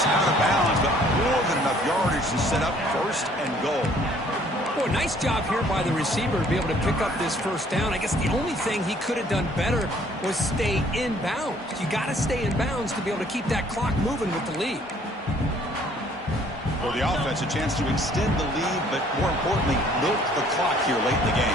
out of bounds, but more than enough yardage to set up first and goal. Boy, nice job here by the receiver to be able to pick up this first down. I guess the only thing he could have done better was stay in bounds. You got to stay in bounds to be able to keep that clock moving with the lead. For the offense, a chance to extend the lead, but more importantly, milk the clock here late in the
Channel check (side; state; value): both; normal; correlation 0.59